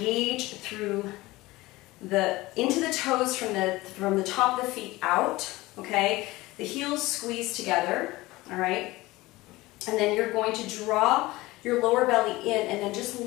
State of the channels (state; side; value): quieter; right; 19.7 dB